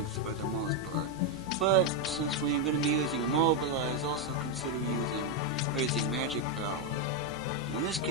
for the most part. But since we're going to be using immobilize, also consider raising magic power. In this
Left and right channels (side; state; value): both; normal; correlation 0.03